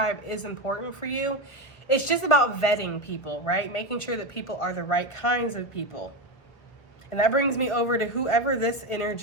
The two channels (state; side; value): late; right; 1.1 ms